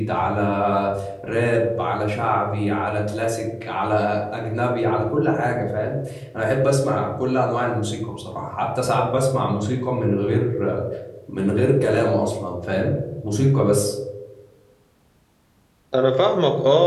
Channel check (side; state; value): both; identical; correlation 1.00